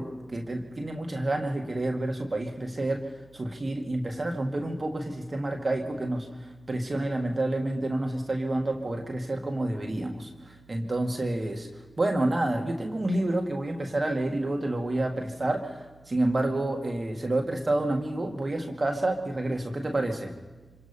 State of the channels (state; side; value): noise; right; hum, 27 dB below the sound